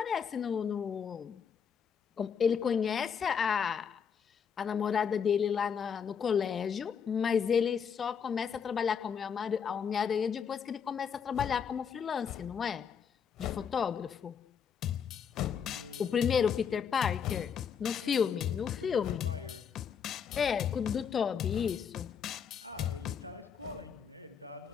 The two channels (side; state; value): right; quieter; 7.2 dB